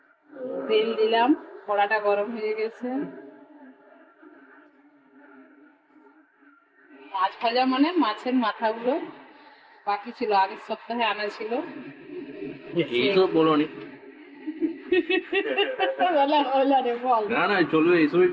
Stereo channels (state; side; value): identical; both; correlation 1.00